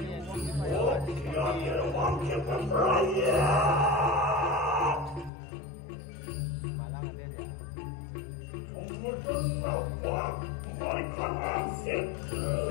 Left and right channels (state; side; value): drops out; right; at 5.3 s